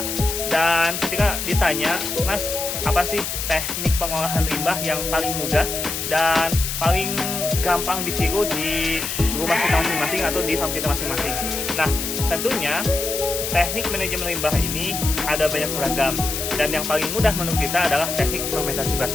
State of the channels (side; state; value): left; noise; hiss, 4 dB below the sound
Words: Dan ketika ditanya, Mas, apa sih teknik pengolahan limbah yang paling mudah dan paling gampang ditiru di rumah kita masing-masing atau di farm kita masing-masing? Nah, tentunya teknik manajemen limbah ini ada banyak beragam, dan yang paling mudah menurut kita adalah teknik fermentasi